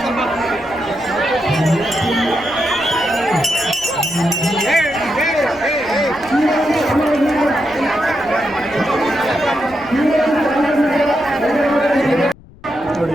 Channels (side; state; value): left; noise; rumble, 24 dB below the sound